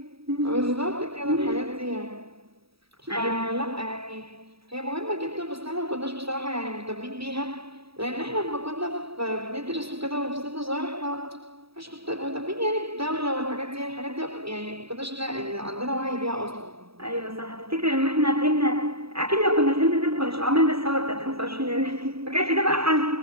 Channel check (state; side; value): late; left; 0.77 ms